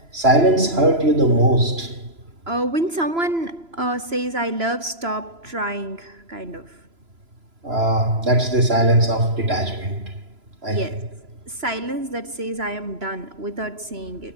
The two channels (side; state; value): left; late; 3.0 ms